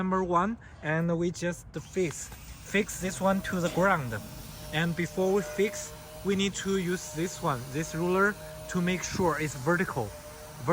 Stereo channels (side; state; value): both; identical; correlation 1.00